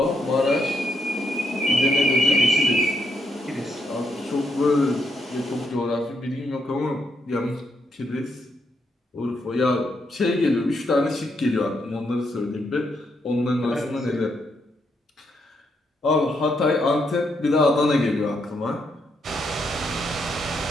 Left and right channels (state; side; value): normal; both; correlation 0.78